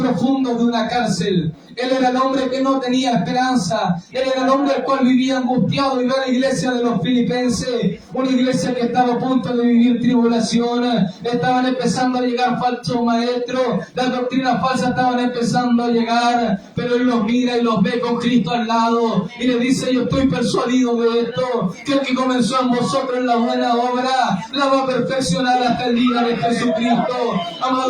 de una cárcel. Él era el hombre que no tenía esperanza. Él era el hombre el cual vivía angustiado, y ve a la iglesia de los filipenses, una iglesia que estaba a punto de vivir tribulación. Estaban empezando a llegar falsos maestros, las doctrinas falsas estaban empezando a llegar, pero él los mira y los ve con Cristo al lado y le dice: yo estoy persuadido de esto, que el que comenzó en vosotros la buena obra la va a perfeccionar hasta el día de Jesucristo.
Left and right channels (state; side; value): identical; both; correlation 1.00